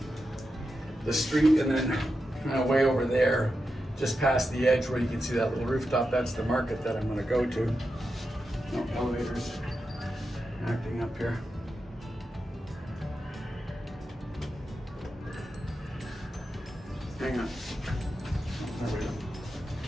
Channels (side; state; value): both; normal; correlation 0.89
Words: street, and then kind of way over there, just past the edge where you can see that little rooftop, that's the market that I'm gonna go to. No elevators acting up here. Hang on. Oh, there we go.